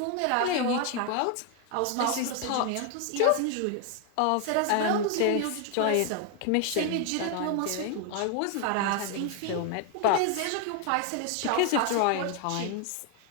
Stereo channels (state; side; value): different; both; correlation 0.01